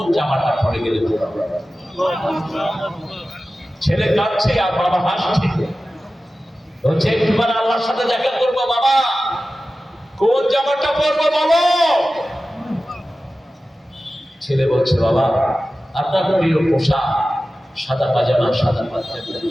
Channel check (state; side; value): normal; both; correlation 0.95